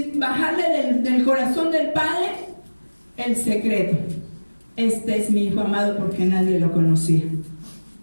bajarle del corazón del Padre el secreto: este es mi Hijo amado, porque nadie lo conocía.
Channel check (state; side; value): inverted; both; correlation -1.00